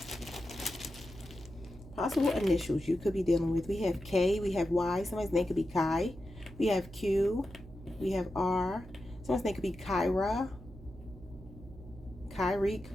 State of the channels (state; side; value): noise; right; hum, 17 dB below the sound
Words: Possible initials you could be dealing with. We have K, we have Y. Somebody's name could be Kai. We have Q, we have R. Someone's name could be Kyra, Kyrique.